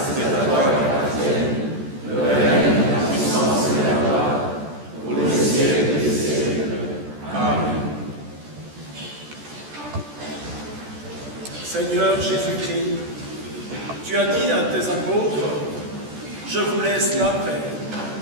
Seigneur Jésus-Christ, tu as dit à tes apôtres, je vous laisse la paix,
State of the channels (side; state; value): left; late; 14 ms